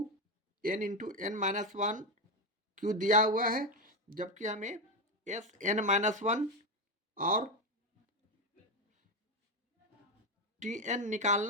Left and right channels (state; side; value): normal; both; correlation 0.11